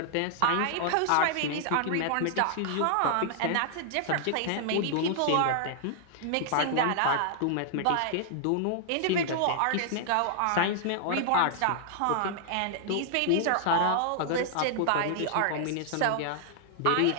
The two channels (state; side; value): different; both; correlation 0.00